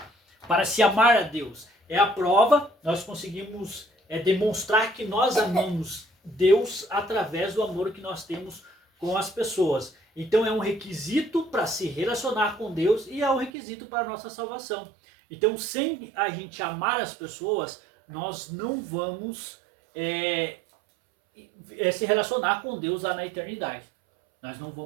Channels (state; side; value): drops out; left; at 13.5 s